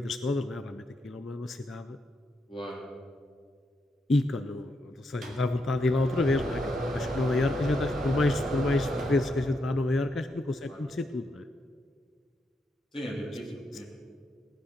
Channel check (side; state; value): both; normal; correlation 0.80